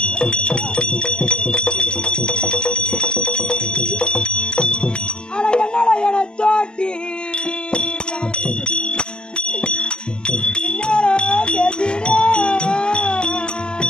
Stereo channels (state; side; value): late; right; 0.048 ms